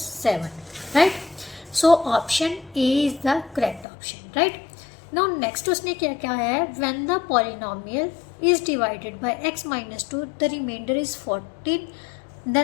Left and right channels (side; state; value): right; drops out; at 3.9 s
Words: right. So option A is the correct option, right. Now next उसने क्या कहा है, when the polynomial is divided by x minus 2 the reminder is 14